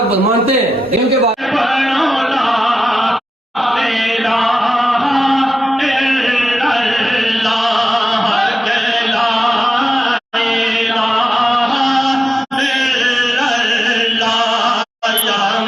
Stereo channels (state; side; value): normal; both; correlation 0.91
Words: کو مانتے ہیں، ان کے بعد